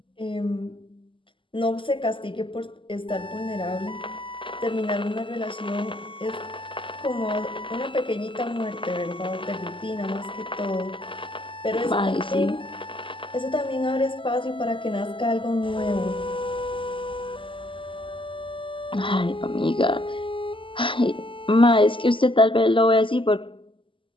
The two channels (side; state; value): right; late; 0.25 ms